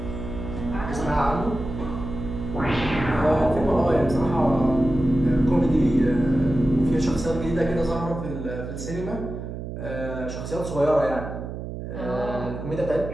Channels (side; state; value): right; noise; hum, 8 dB below the sound